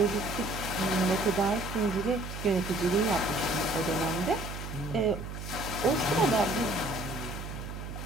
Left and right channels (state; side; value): noise; right; hum, 8 dB below the sound